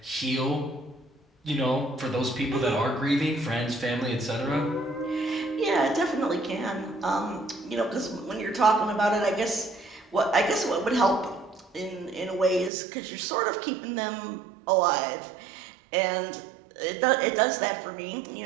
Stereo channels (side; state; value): left; drops out; at 12.7 s